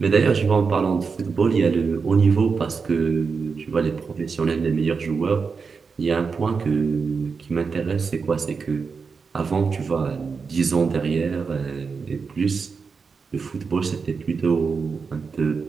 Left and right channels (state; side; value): quieter; left; 5.2 dB